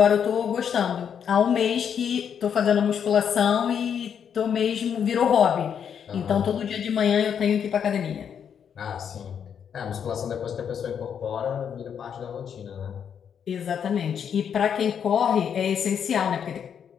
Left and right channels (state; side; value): quieter; right; 7.9 dB